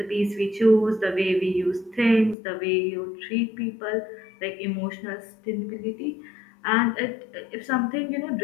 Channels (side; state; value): right; drops out; at 2.4 s